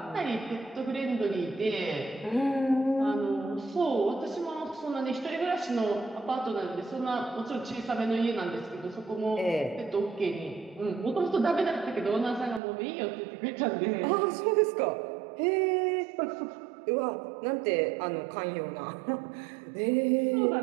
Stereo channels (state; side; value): drops out; left; at 12.6 s